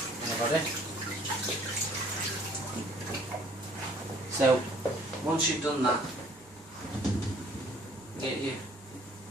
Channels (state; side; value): normal; both; correlation 0.57